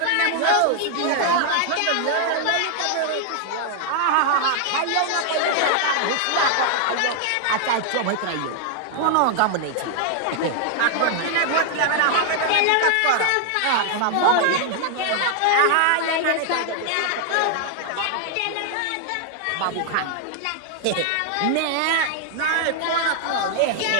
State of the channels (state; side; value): different; both; correlation 0.00